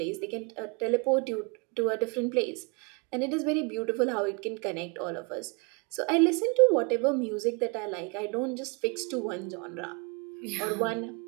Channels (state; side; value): quieter; left; 32.2 dB